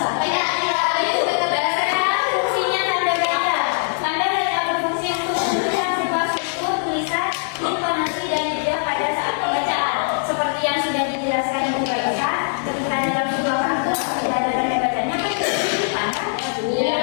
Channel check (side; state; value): right; silent; 65 dB below the other